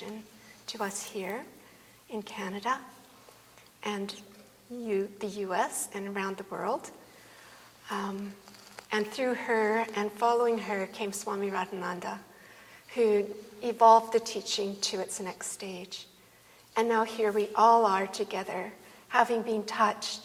to us here in Canada and the US and around the world. And through her and following her came Swami Radhananda, who evolved the teaching to its next stage. And now here we all are together, having been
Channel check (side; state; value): both; identical; correlation 1.00